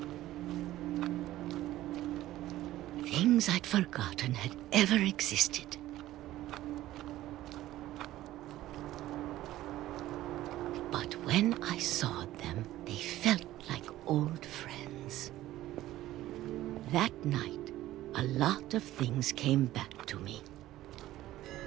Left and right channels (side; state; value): left; quieter; 15.0 dB